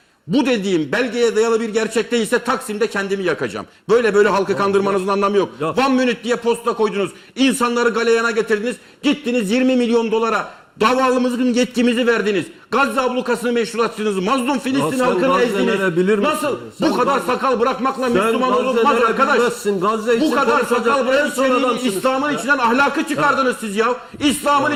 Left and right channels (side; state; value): both; identical; correlation 1.00